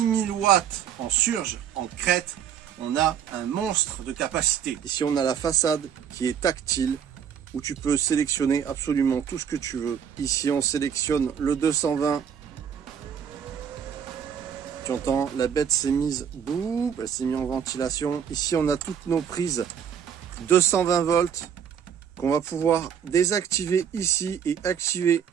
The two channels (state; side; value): quieter; left; 8.2 dB